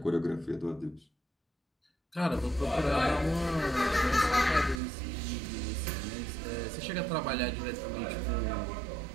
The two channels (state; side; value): drops out; left; at 4.8 s